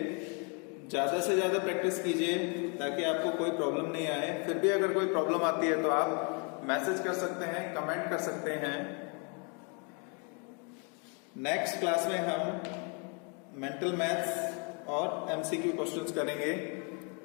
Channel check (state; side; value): quieter; right; 36.4 dB